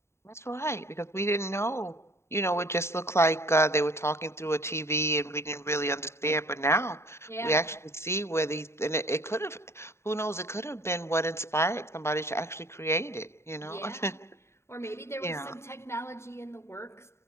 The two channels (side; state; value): right; late; 0.13 ms